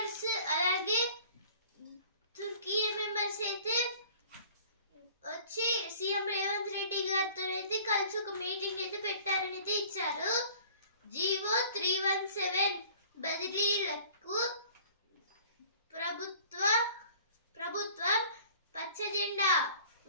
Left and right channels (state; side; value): inverted; both; correlation -0.50